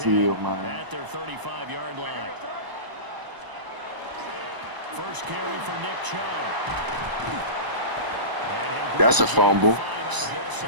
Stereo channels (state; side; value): late; left; 1.0 ms